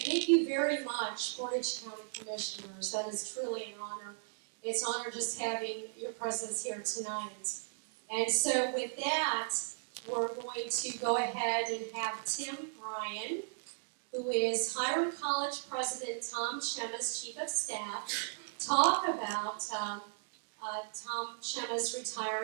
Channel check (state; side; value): silent; left; digital silence